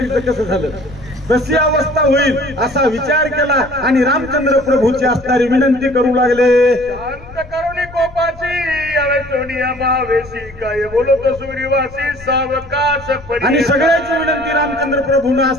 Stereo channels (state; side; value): noise; left; rumble, 18 dB below the sound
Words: कसं झालं, तशी अवस्था होईल असा विचार केला आणि रामचंद्र प्रभूची असणारी विनंती करू लागले। शांत करुणी कोपाची सोनिया भावेशी काय बोलत सुग्रीवासी सावकाश आणि सगळ्याची विनंती रामचंद्र प्रभूने